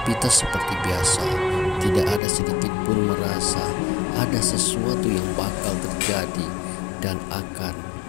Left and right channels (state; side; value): drops out; right; at 2.2 s